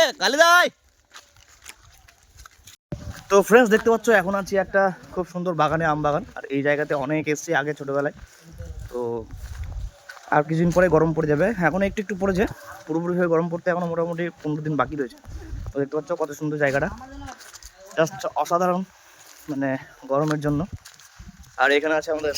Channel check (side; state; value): both; identical; correlation 1.00